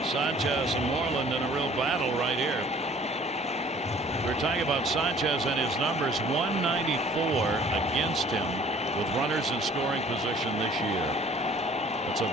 Sanchez and Moreland in a real battle right here. We're talking about Sanchez and his numbers, 194 against him with runners in scoring position this year. That's a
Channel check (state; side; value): normal; both; correlation 0.53